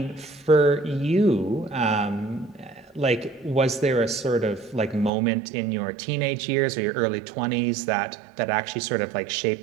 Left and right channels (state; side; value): drops out; left; at 5.1 s